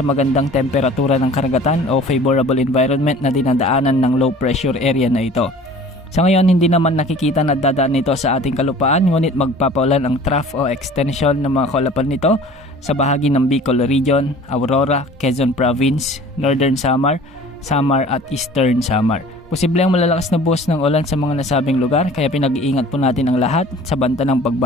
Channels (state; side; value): normal; both; correlation 0.46